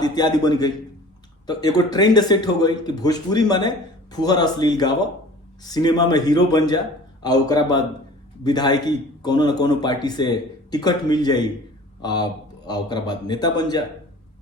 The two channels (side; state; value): both; normal; correlation 0.45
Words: इत्यादि बन गई। तो एगो ट्रेंड सेट हो गई कि भोजपुरी माने फुहर अश्लील गावा, सिनेमा में हीरो बन जा, आ ओकरा बाद विधायकी कोनो न कोनो पार्टी से टिकट मिल जाई, आ ओकरा बाद नेता बन जा,